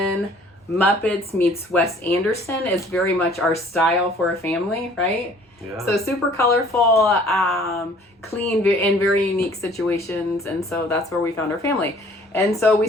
Muppets meets Wes Anderson is very much our style for a family, right? Yeah. So super colorful, clean, in very unique situations. And so that's where we found our family. And so we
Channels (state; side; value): normal; both; correlation 0.55